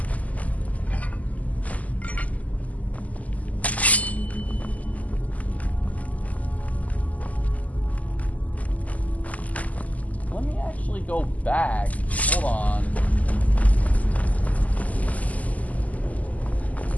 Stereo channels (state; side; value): late; right; 0.075 ms